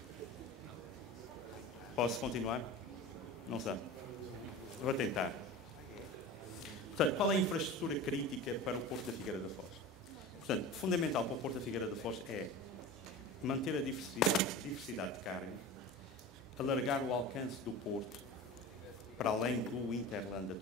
Posso continuar? Não sei. Vou tentar. Portanto, qual é a infraestrutura crítica para o Porto da Figueira da Foz? Portanto, fundamental para o Porto da Figueira da Foz é manter a diversidade de carga, alargar o alcance do Porto para além do Interland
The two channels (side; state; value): both; normal; correlation 0.33